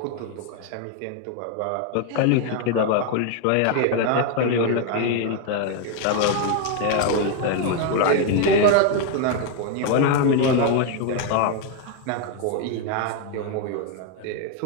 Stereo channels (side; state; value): both; different; correlation 0.01